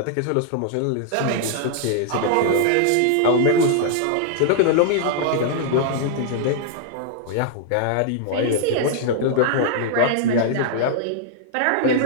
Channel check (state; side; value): different; both; correlation -0.01